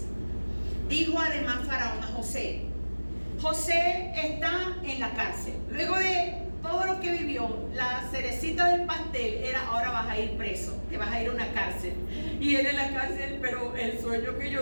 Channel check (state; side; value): inverted; both; correlation -1.00